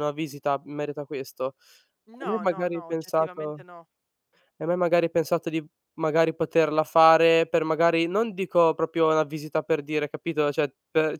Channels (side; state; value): both; identical; correlation 1.00